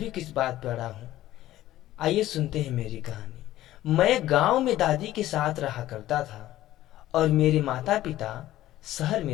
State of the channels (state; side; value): quieter; right; 14.5 dB